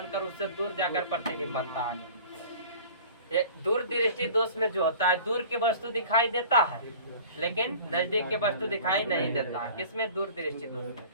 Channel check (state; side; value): inverted; both; correlation -0.44